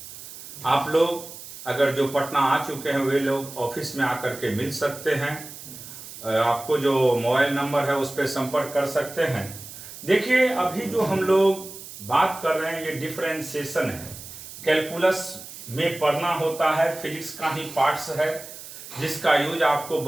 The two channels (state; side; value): noise; right; hiss, 14 dB below the sound